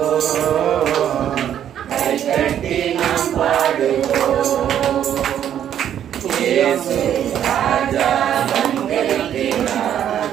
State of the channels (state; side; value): quieter; left; 10.0 dB